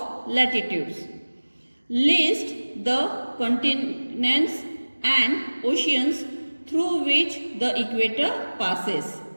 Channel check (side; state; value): both; inverted; correlation -1.00